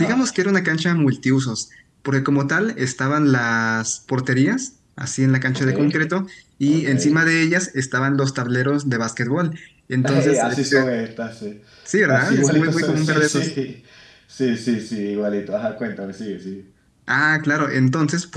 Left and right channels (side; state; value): both; identical; correlation 1.00